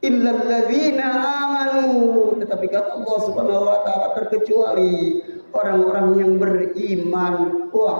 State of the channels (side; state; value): both; inverted; correlation -1.00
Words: Illal ladzina amanu, tetapi kata Allah Subhanahu wa taala, terkecuali orang-orang yang beriman,